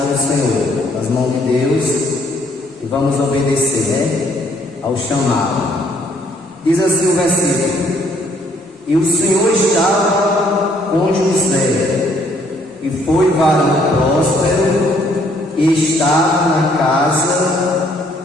do Senhor, nas mãos de Deus, e vamos obedecer, ao chamado. Diz assim o versículo: e o Senhor estava com José, e foi varão próspero, e estava na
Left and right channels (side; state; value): both; normal; correlation 0.65